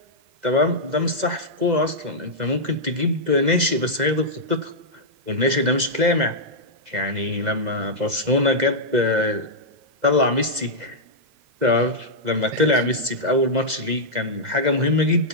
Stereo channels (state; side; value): late; left; 2.0 ms